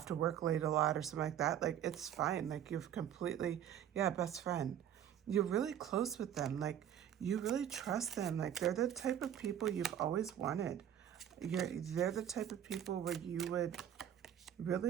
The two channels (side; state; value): left; quieter; 10.0 dB